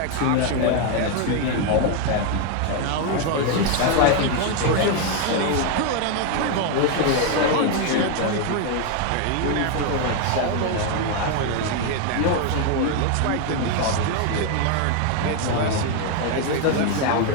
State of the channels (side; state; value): both; different; correlation 0.01